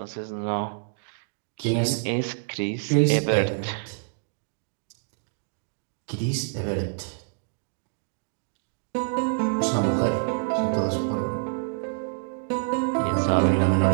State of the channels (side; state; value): left; silent; digital silence